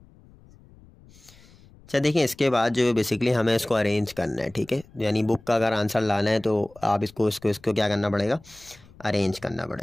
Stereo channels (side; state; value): left; noise; rumble, 25 dB below the sound